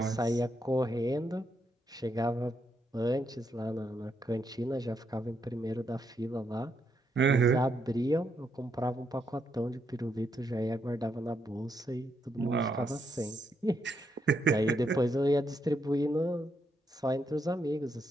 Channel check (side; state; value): both; normal; correlation 0.79